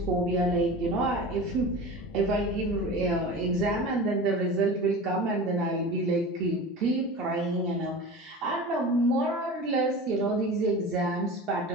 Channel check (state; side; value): normal; both; correlation 0.33